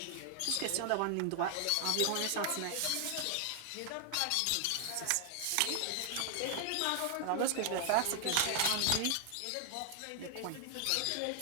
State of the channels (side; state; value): both; different; correlation 0.00